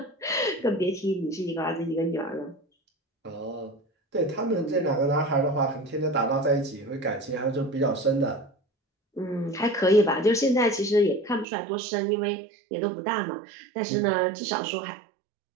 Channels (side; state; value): left; drops out; at 11.5 s